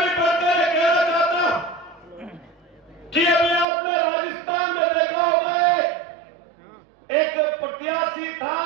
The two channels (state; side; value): drops out; left; at 3.7 s